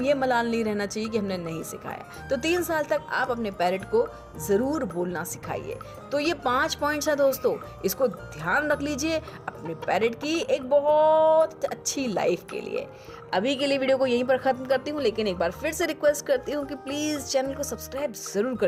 ये मलाल नहीं रहना चाहिए कि हमने नहीं सिखाया। तो 3 साल तक आप अपने पैरेट को ज़रूर बोलना सिखाइए। तो ये 5 पॉइंट्स हैं दोस्तों, इसको ध्यान रख लीजिए अपने पैरेट की एक बहुत अच्छी लाइफ के लिए। अभी के लिए वीडियो को यहीं पर ख़त्म करती हूँ, लेकिन एक बार फिर से रिक्वेस्ट करती हूँ कि प्लीज़ चैनल को सब्सक्राइब ज़रूर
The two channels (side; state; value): both; identical; correlation 1.00